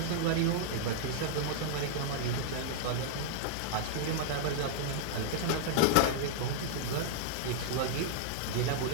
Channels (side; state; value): both; different; correlation -0.01